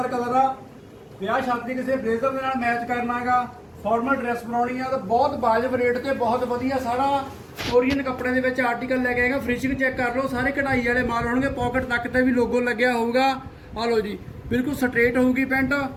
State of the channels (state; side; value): identical; both; correlation 1.00